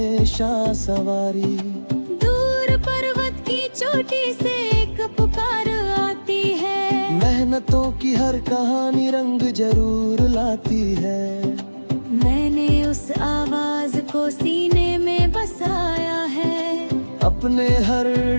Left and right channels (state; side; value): inverted; both; correlation -1.00